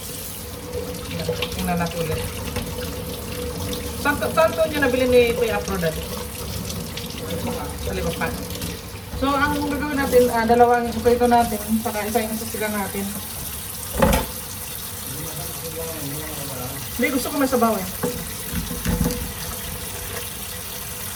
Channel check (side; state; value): both; identical; correlation 1.00